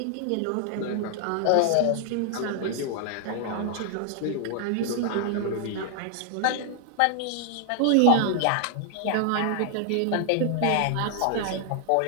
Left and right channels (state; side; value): different; both; correlation 0.00